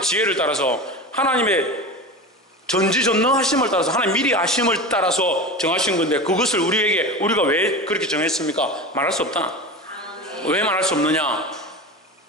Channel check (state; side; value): normal; both; correlation 0.28